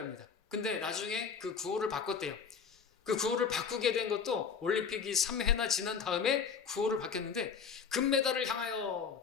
근데 나중에 그 구호를 바꿨대요. 그 구호를 바꾸게 된 것도 올림픽이 3회나 지난 다음에 구호를 바뀌었는데, 금메달을 향하여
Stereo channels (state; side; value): quieter; right; 6.2 dB